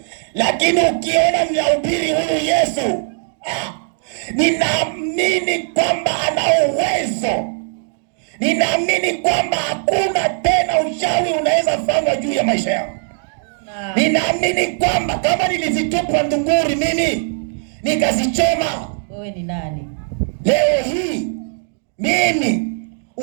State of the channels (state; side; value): silent; left; digital silence